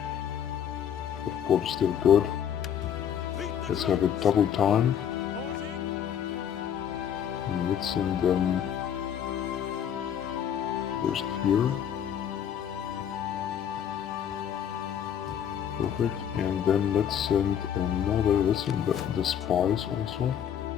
the port is still good. Let's have it double time. Pausing! And let's send them first here. Perfect. And then let's send another, let's send the spies also.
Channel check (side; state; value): right; quieter; 9.1 dB